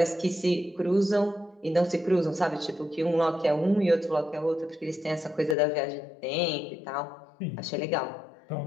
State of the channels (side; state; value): right; drops out; at 5.6 s